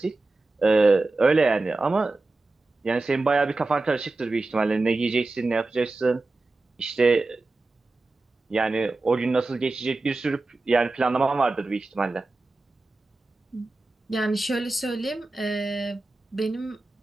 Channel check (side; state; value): left; quieter; 3.2 dB